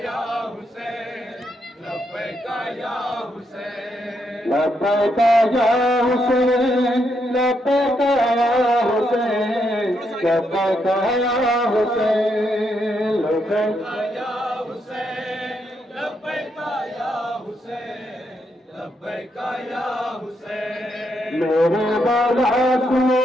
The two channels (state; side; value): normal; both; correlation 0.79